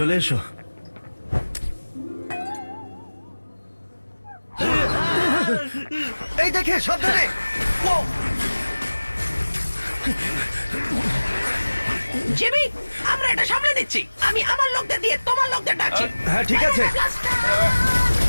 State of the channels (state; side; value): inverted; both; correlation -1.00